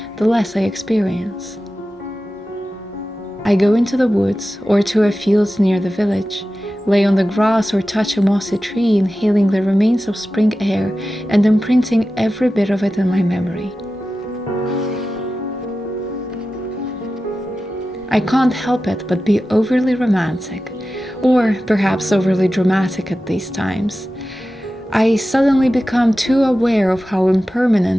the less I experience. I go into the woods or to a field near the village, lay on the grass or touch a mossy tree, inhaling the remains of spring air and imprinting every bit of it in my memory. I can't help it but be overly romantic, or perhaps overly dramatic at these times. I suddenly become too aware of how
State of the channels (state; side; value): normal; both; correlation 0.94